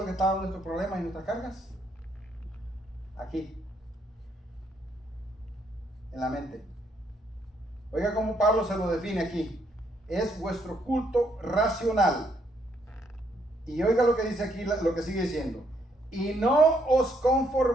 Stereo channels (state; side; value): normal; both; correlation 0.72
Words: que estaban nuestros problemas y nuestras cargas? Aquí, en la mente. Oiga cómo Pablo se lo define aquí. Es vuestro culto racional. Y oiga lo que dice aquí, lo que sigue diciendo. Y no os